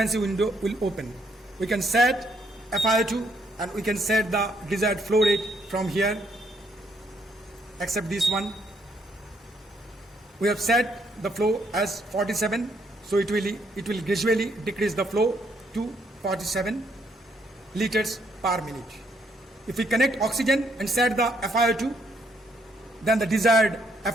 window will open. We can set FiO2 and we can set the desired flow rate from here. Accept this one. We have set the flow as 47, so it will gradually decrease the flow to 47 liters per minute. If we connect oxygen and set the FiO2, then the desired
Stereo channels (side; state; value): both; normal; correlation 0.71